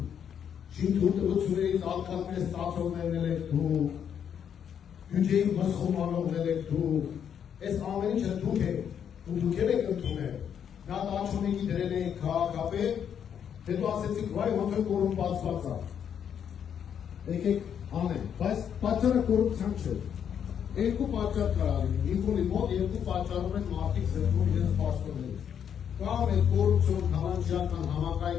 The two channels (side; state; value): right; quieter; 8.4 dB